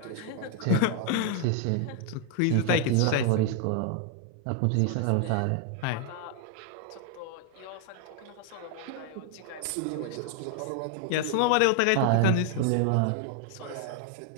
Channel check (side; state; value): both; different; correlation 0.00